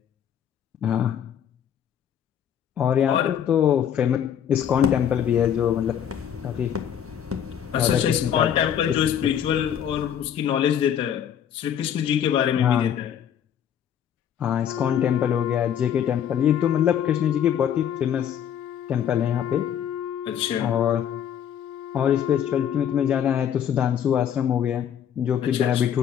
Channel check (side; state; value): right; quieter; 9.2 dB